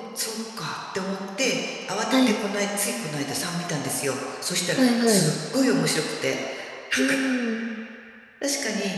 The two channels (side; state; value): both; identical; correlation 1.00